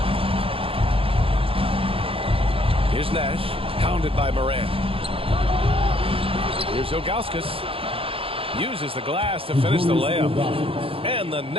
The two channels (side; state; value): left; late; 0.27 ms